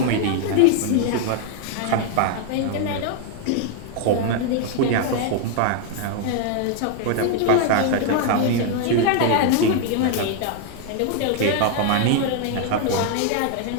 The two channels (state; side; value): different; both; correlation 0.00